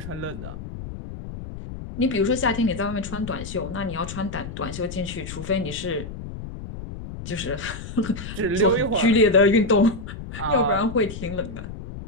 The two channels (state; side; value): noise; left; rumble, 10 dB below the sound